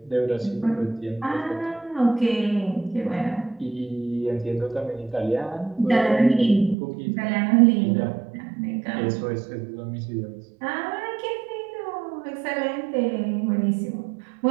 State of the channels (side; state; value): left; drops out; at 6.8 s